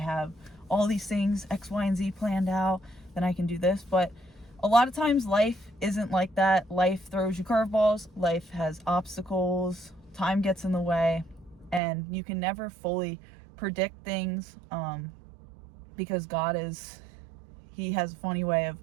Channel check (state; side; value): drops out; left; at 11.8 s